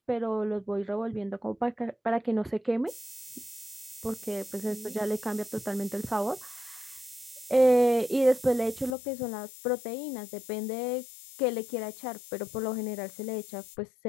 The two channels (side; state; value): right; drops out; at 9.0 s